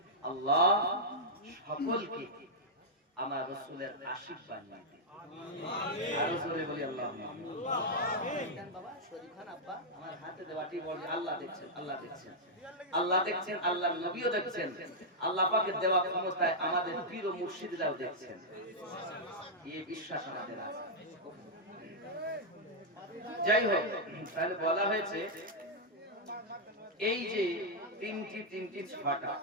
আল্লাহ সকলকে আমার রাসূলের আশিক বানিয়ে দিন আমিন আরো জোরে বলি আল্লাহুম্মা আমিন বাবা শরীফ খান আব্বা আমার হাতে দেওয়াটি বলি আল্লাহ দেখছেন আল্লাহর নবীও দেখছেন আল্লাহ পাকের দেওয়া ক্ষমতায় আমাদের পীর ও মুর্শিদরাও দেখছেন এই বিশ্বাস আমাদের আছে যাই হোক তাহলে বলা হয়েছে এই যে তিনটি ছটা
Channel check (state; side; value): normal; both; correlation -0.05